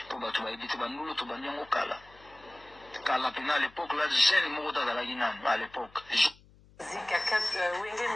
mpo bato bayebi te bandulu tobandi yango kala mpena à l'époque là jeune moko to azalaki nano à l'époque Wenge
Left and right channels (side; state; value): left; noise; hum, 26 dB below the sound